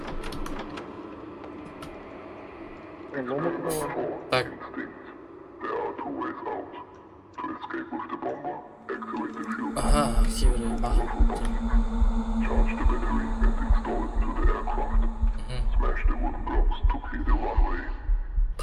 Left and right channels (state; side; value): identical; both; correlation 1.00